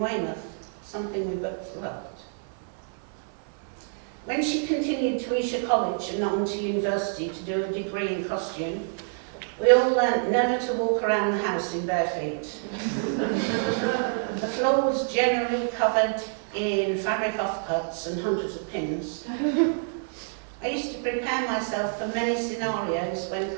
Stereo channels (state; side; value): silent; left; 60 dB below the other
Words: something we both loved. When she continued to Esher College and on to university to do a degree in costume, we all learnt never to walk around the house in bare feet. The floor was generally covered in fabric offcuts and hundreds of pins. I used to prepare myself for many scenarios when